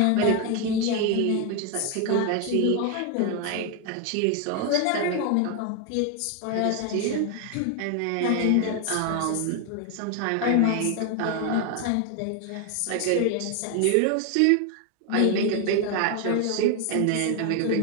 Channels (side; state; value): both; different; correlation 0.01